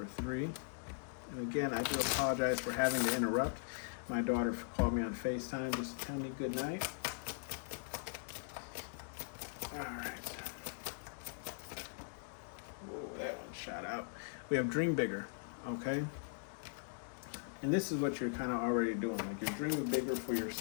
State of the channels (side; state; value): right; silent; digital silence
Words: 3. And again, I do apologize for having to interrupt. My daughter called me on FaceTime just to tell me good night. All right. Whoa, that one shot out. We have Dream Bigger, okay? And this is what you're kind of already doing. Like you're dreaming bigger for